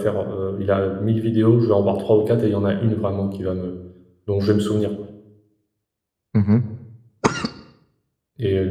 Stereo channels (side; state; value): both; identical; correlation 1.00